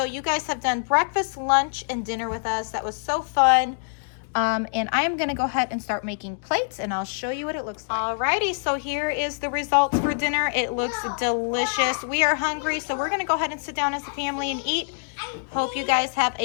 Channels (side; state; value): right; silent; digital silence